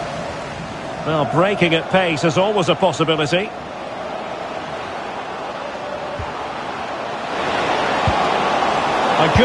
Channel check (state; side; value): identical; both; correlation 1.00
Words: Well, breaking at pace is always a possibility. A